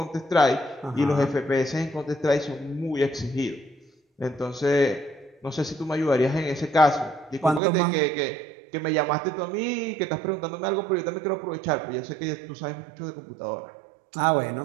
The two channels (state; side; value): drops out; left; at 7.6 s